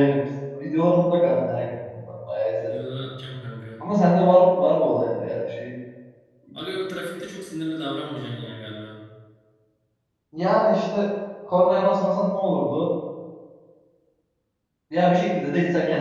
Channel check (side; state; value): both; identical; correlation 1.00